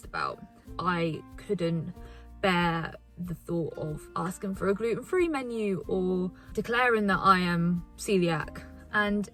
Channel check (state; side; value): identical; both; correlation 1.00